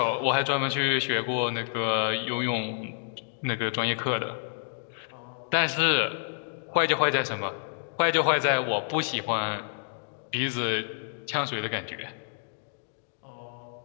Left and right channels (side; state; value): right; silent; digital silence